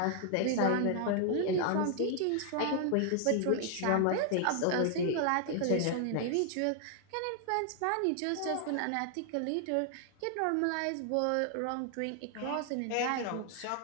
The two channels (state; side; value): different; both; correlation 0.00